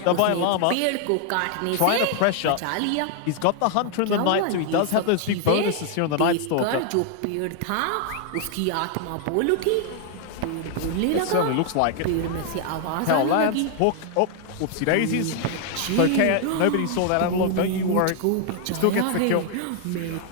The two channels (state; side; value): different; both; correlation 0.00